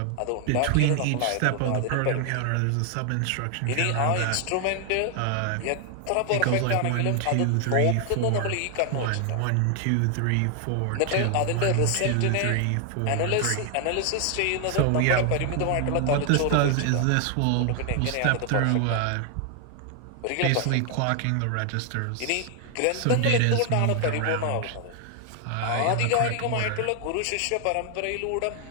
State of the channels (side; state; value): both; different; correlation 0.00